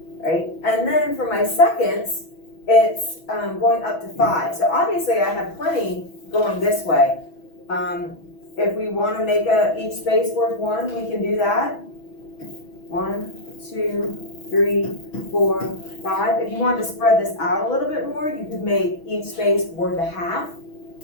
right? And then for my seconds, it's going up to 5. So obviously I have plenty going this way. If we want to make each space worth 1, we can do that. 1, 2, 3, 4, 5. If you wanted to spread this out a little bit more, you could make each space worth a half,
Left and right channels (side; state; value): right; late; 6.1 ms